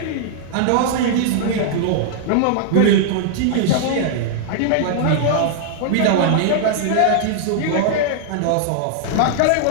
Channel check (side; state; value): both; different; correlation -0.01